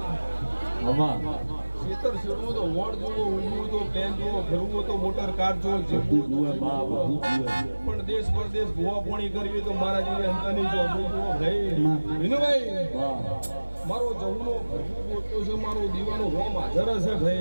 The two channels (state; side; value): inverted; both; correlation -1.00